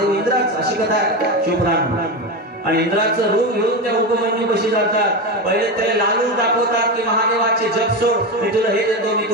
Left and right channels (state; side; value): normal; both; correlation 0.18